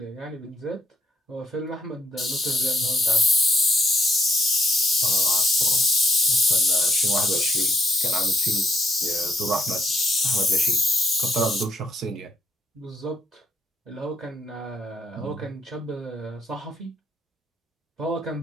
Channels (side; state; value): both; normal; correlation 0.73